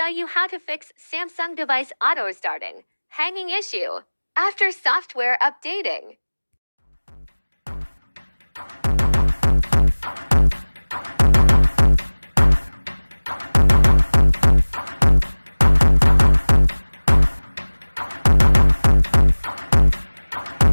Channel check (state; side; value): inverted; both; correlation -1.00